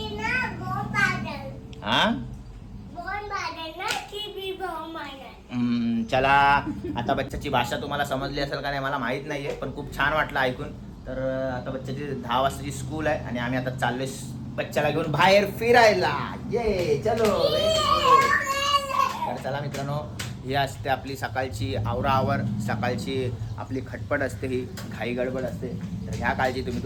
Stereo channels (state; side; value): identical; both; correlation 1.00